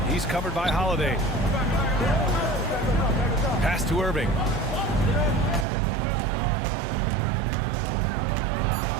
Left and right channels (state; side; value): drops out; left; at 5.7 s